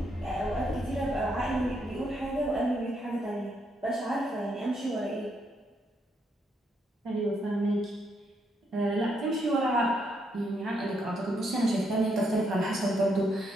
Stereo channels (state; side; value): normal; both; correlation 0.76